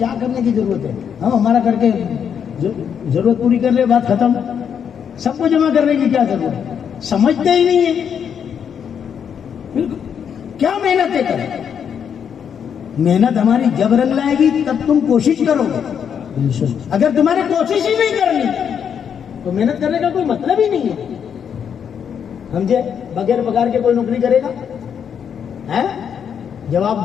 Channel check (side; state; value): right; quieter; 7.8 dB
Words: کرنے کی ضرورت ہے؟ ہم ہمارا کر کے ضرورت پوری کر لے، بات ختم. سب کو جمع کرنے کی کیا ضرورت ہے؟ سمجھتے ہی نہیں ہے. کیا محنتیں کریں؟ محنت ہماری جب رنگ لائے گی تب تم کوشش کرو گے. اگر تمہاری کوشش ہی نہیں کرنی تو محنت کرنے کا کوئی مطلب ہی نہیں ہے. سمجھے؟ بغیر پگار کے کوئی نوکری کرے گا؟ جواب